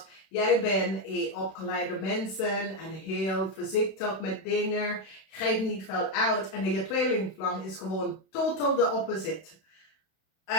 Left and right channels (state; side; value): late; right; 31 ms